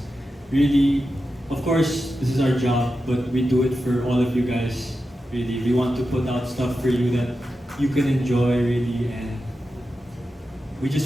Really, of course, this is our job, but we do it for all of you guys. Really, we want to put out stuff for you that you can enjoy, really, and we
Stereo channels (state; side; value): normal; both; correlation 0.90